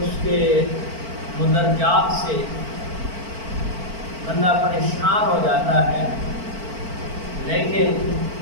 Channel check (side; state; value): left; late; 4.5 ms